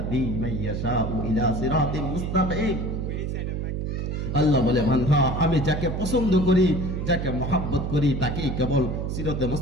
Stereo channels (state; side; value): noise; right; hum, 2 dB below the sound